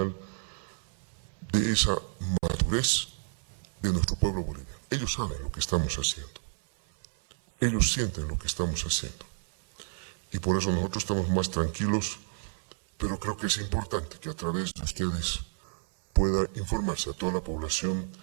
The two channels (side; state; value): left; silent; 58 dB below the other